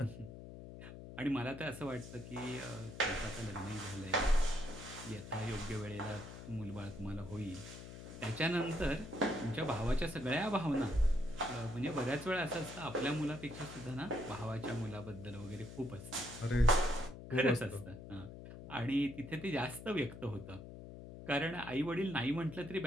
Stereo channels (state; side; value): noise; left; hum, 12 dB below the sound